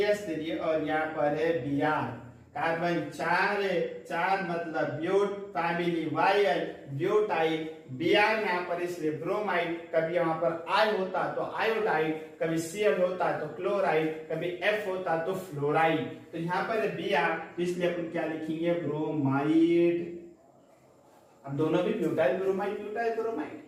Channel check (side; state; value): both; identical; correlation 1.00